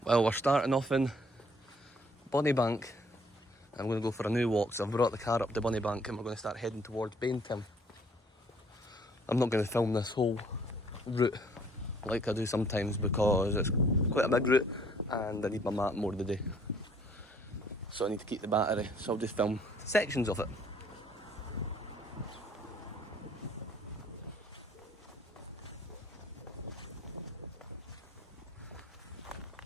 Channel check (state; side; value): normal; both; correlation 0.61